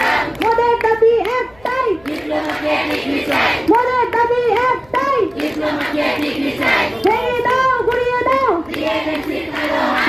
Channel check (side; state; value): left; noise; rumble, 28 dB below the sound